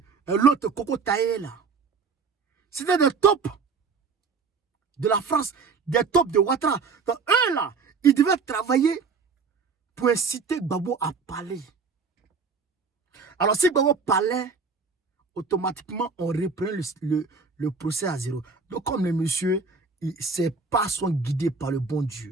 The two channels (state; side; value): quieter; left; 4.9 dB